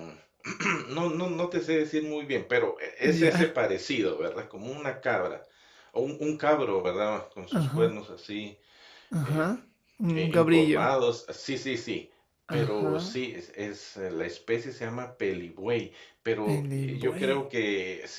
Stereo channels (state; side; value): identical; both; correlation 1.00